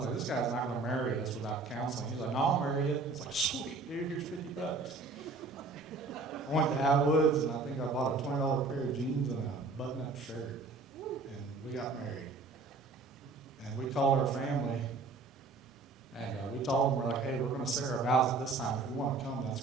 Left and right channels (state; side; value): quieter; left; 3.9 dB